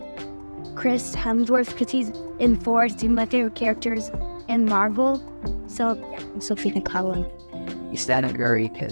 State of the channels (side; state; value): both; inverted; correlation -1.00